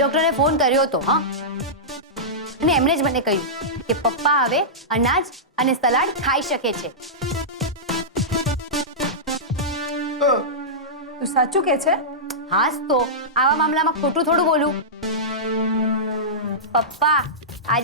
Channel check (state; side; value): normal; both; correlation -0.14